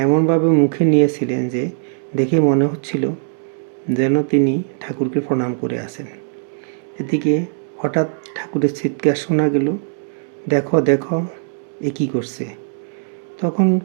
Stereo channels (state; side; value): silent; left; digital silence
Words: এমনভাবে মুখে নিয়েছিলেন যে দেখে মনে হচ্ছিল যেন তিনি ঠাকুরকে প্রণাম করে আছেন। এদিকে হঠাৎ ঠাকুরের চিৎকার শোনা গেল, দেখো দেখো, এ কী করছে। তখন